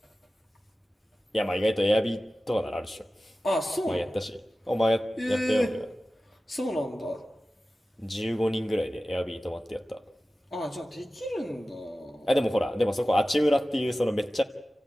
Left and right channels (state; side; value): normal; both; correlation 0.95